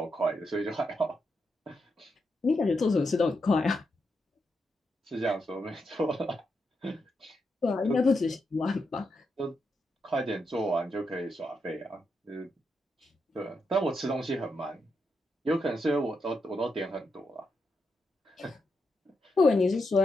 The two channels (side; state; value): both; normal; correlation 0.84